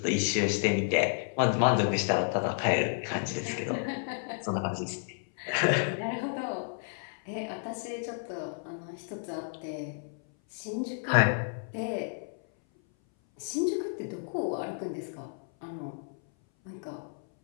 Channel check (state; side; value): silent; right; 57 dB below the other